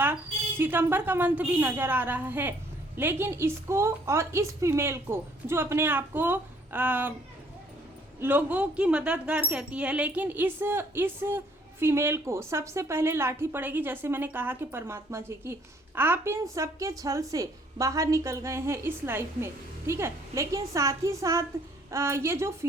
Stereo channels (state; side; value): normal; both; correlation 0.63